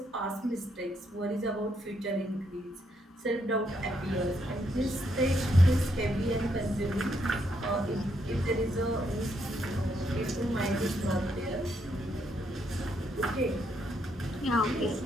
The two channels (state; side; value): normal; both; correlation 0.76